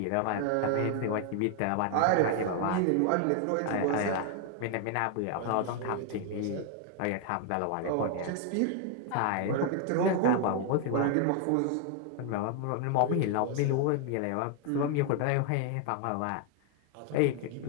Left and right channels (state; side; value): different; both; correlation 0.00